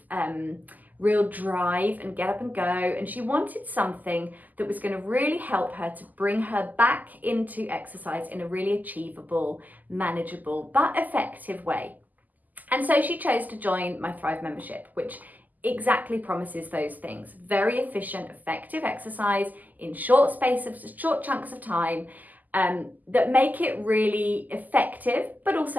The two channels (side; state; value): left; late; 0.082 ms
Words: real drive and get up and go. And she wanted something that was going to really help her to bring her back into exercise in a really achievable, manageable, but effective way. And so she chose to join my Thrive membership, which exactly promises those things. Very efficient, effective exercise in short chunks of time that make it really effective, but